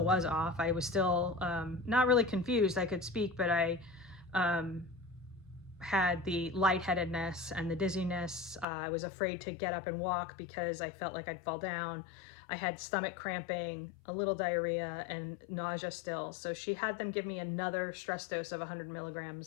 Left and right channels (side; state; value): right; drops out; at 8.7 s